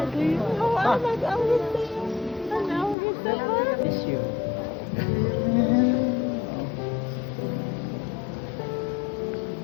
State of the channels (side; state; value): right; drops out; at 3.0 s